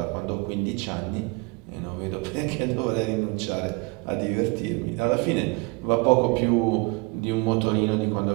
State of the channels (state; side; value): quieter; left; 27.6 dB